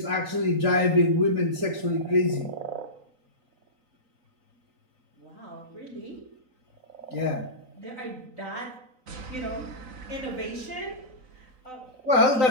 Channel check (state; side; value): late; left; 3.9 ms